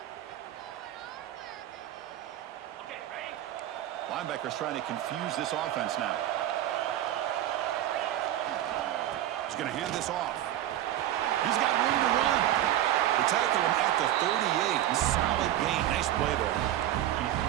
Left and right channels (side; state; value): left; quieter; 12.8 dB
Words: Linebacker's trying to confuse this offense now. He's going to hand this off. He's got room to run. They tackle him at the 38. Solid gain. Nice play there.